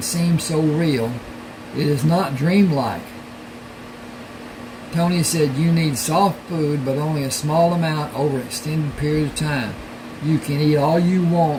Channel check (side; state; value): both; identical; correlation 1.00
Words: seem so real. It is not dreamlike." Tony said, "You need soft food, but only a small amount over an extended period of time. You can eat all you